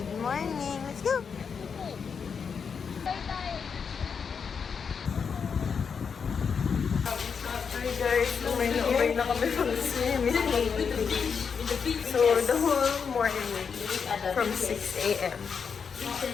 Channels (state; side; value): quieter; right; 6.2 dB